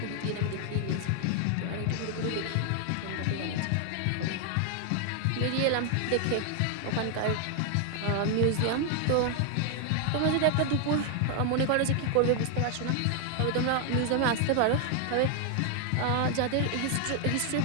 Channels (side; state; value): both; different; correlation 0.00